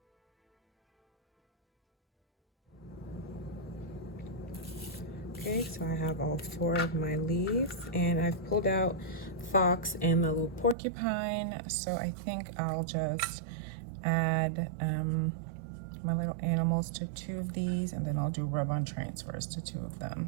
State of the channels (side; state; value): left; drops out; at 10.8 s